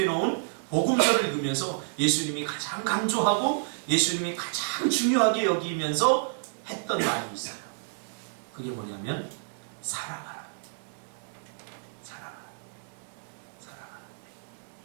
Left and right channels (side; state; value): left; silent; digital silence